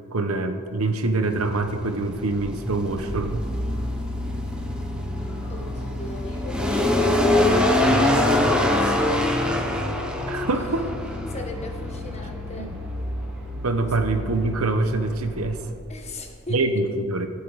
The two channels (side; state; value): both; normal; correlation 0.54